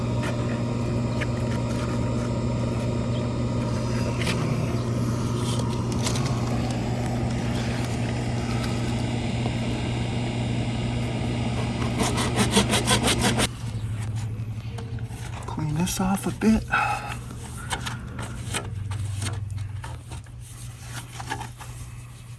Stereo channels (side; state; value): both; identical; correlation 1.00